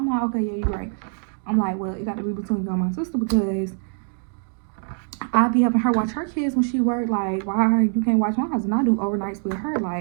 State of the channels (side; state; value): left; silent; 56 dB below the other